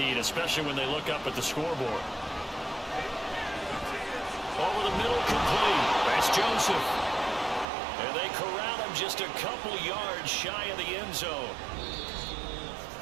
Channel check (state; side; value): drops out; left; at 7.7 s